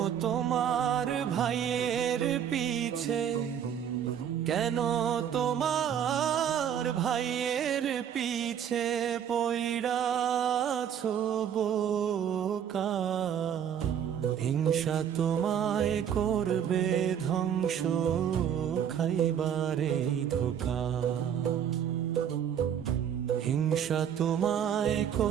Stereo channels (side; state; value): left; quieter; 8.9 dB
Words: তোমার ভাইয়ের পিছে, কেন তোমার ভাইয়ের পিছে পইড়াছো বোকা? হিংসা তোমায় করবে ধ্বংস, খাইবারে ধোঁকা। হিংসা তোমায়